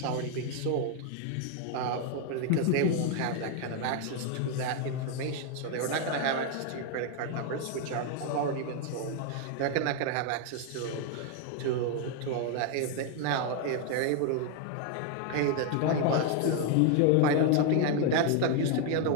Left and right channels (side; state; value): both; different; correlation 0.01